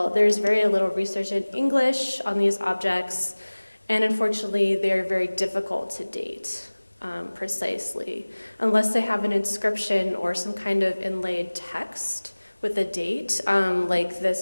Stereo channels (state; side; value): inverted; both; correlation -1.00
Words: there's very little research in English on these objects, and unfortunately, they're very difficult to date precisely, unless they have an inscription or some kind of inlaid text with a date, like